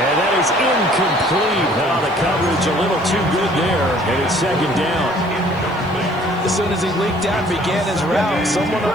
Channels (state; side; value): noise; left; hiss, 30 dB below the sound